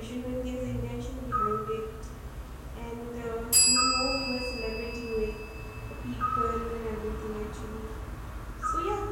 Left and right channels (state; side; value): identical; both; correlation 1.00